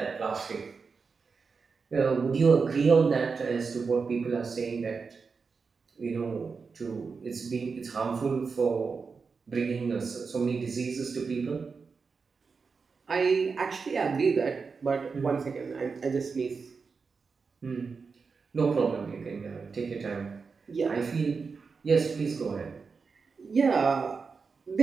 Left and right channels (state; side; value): quieter; left; 5.0 dB